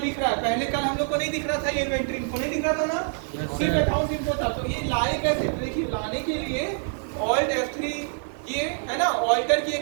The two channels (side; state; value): left; silent; 61 dB below the other